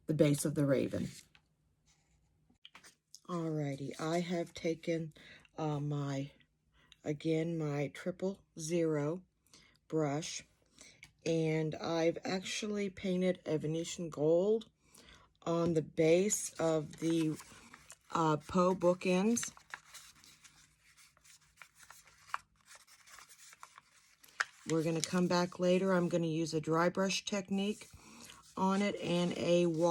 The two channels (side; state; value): both; identical; correlation 1.00